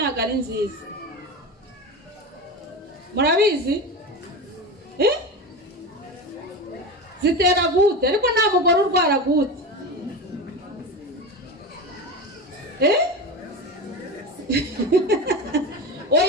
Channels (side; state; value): both; normal; correlation 0.24